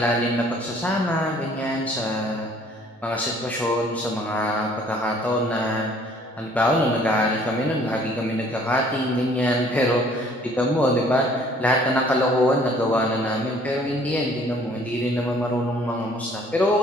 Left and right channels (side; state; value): both; normal; correlation 0.57